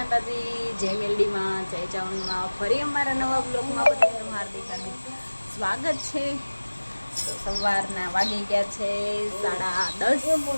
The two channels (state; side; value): inverted; both; correlation -1.00